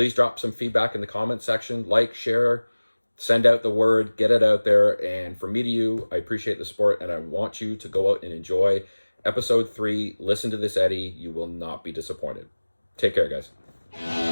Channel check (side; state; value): both; inverted; correlation -1.00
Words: drop some feedback in the comment section, like, share, send out the word, get it out there. And from me to you, I appreciate the support, and I want you to go out and enjoy episode 3. Listen to this, Eddie. You will not be disappointed. Take care, guys.